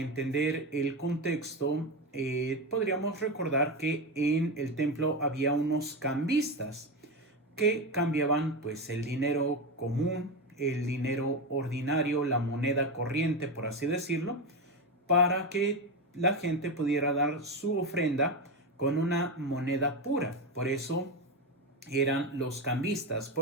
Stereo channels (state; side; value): normal; both; correlation 0.15